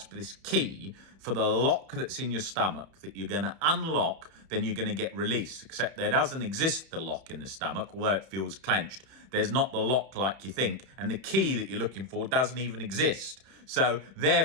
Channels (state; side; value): late; left; 31 ms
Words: this key for the lock that's in your stomach that you're going to unlock, then you're going to get release. Except there doesn't exist the lock in the stomach, although it feels clenched. There's not the lock like you think, and the key that you're looking for doesn't even exist. So